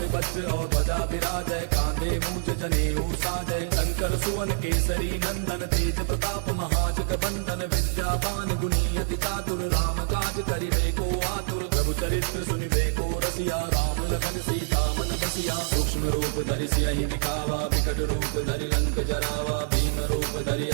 वज्र और ध्वजा विराजय, कांधे मूंज जनेऊ साजय। शंकर सुवन केसरी नंदन, तेज प्रताप महाजग बंदन। विद्यावान गुणी अति चातुर, राम काज करिबे को आतुर। प्रभु चरित्र सुनिबे को रसिया, राम लखन सीता मन बसिया। सूक्ष्म रूप धरि सियहि दिखावा, विकट रूप धरि लंक जरावा। भीम रूप धरि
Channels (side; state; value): left; silent; digital silence